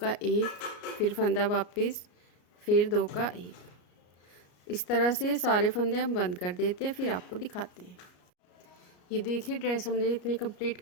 1, फिर फंदा वापस, फिर 2 का 1। इस तरह से सारे फंदे हम बंद कर देते हैं, फिर आपको दिखाते हैं। ये देखिए ड्रेस हमने इतनी कंप्लीट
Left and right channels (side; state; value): right; late; 33 ms